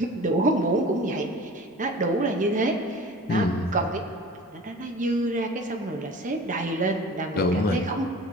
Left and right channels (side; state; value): both; normal; correlation 0.41